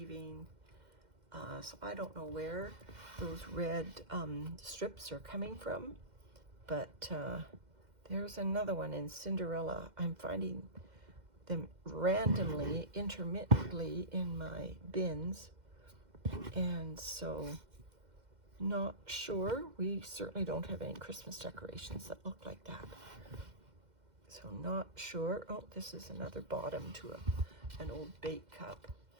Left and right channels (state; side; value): late; left; 2.1 ms